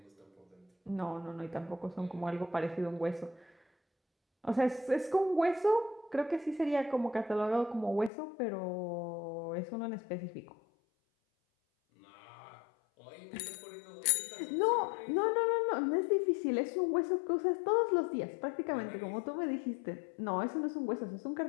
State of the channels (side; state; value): right; drops out; at 8.1 s